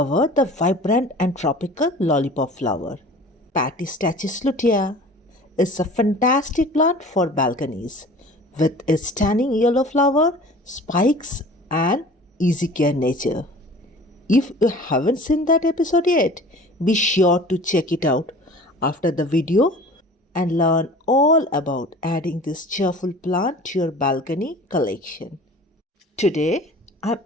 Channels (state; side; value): normal; both; correlation 0.43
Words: the vibrant and tropical lollipop flower. Patistachys lutea is a fantastic plant for balconies with its stunning yellow flower, spikes, and easy care nature. If you haven't seen that episode yet, be sure to check it out after the video and learn all about adding this cheerful plant to your balcony collection. Today, I've